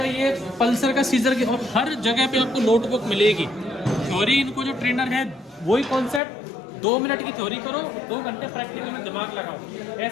ये पल्सर का, सीजर की, और हर जगह पे आपको नोटबुक मिलेगी। थ्योरी इनको जो ट्रेनर है वही कॉन्सेप्ट, 2 मिनट की थ्योरी करो, 2 घंटे प्रैक्टिकल में दिमाग लगाओ।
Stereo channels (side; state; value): right; drops out; at 6.2 s